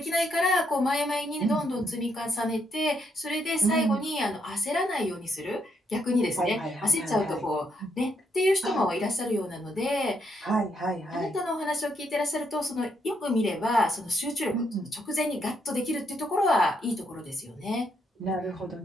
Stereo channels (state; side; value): normal; both; correlation 0.76